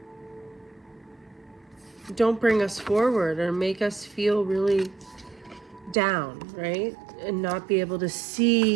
don't bring us forward or make us feel really down, right? And not be able to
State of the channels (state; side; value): drops out; left; at 6.0 s